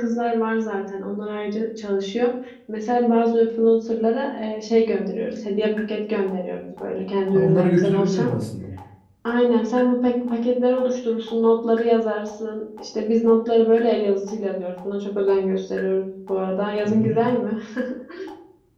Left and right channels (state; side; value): identical; both; correlation 1.00